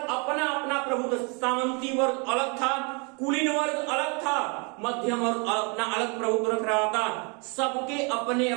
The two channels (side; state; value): left; quieter; 33.6 dB